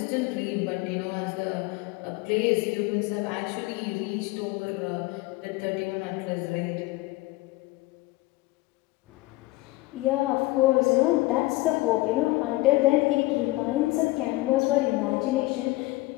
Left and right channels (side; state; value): right; quieter; 20.1 dB